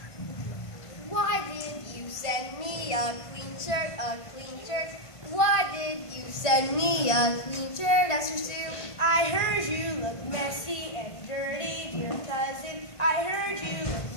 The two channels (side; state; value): right; late; 1.5 ms